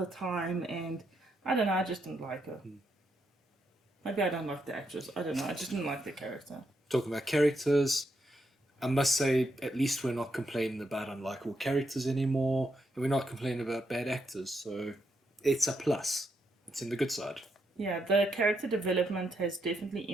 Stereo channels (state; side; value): normal; both; correlation 0.80